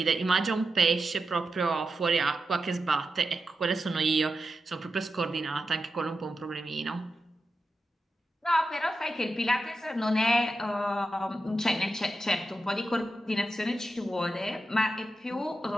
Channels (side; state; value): both; normal; correlation 0.89